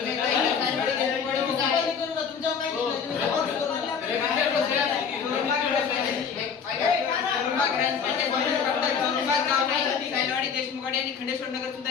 देशमुख आणि खंडेश्वर नगर सुद्धा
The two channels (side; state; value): right; quieter; 6.6 dB